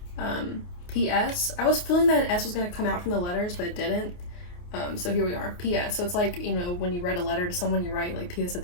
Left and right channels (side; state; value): right; late; 28 ms